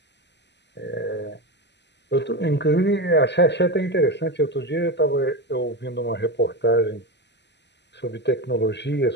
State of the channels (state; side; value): late; right; 0.50 ms